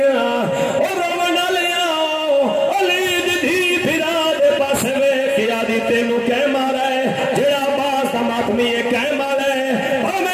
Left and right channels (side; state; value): both; identical; correlation 1.00